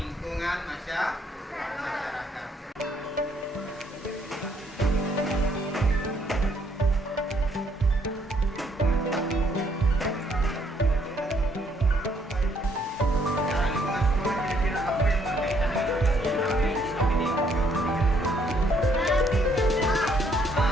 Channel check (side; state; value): both; normal; correlation 0.68